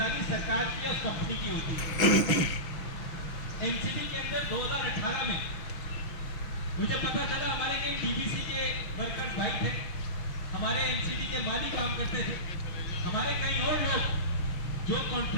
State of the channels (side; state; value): right; late; 6.4 ms